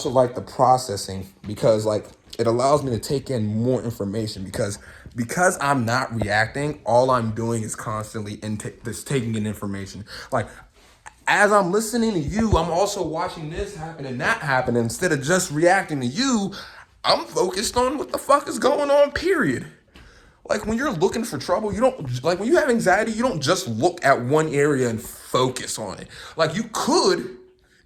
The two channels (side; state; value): both; identical; correlation 1.00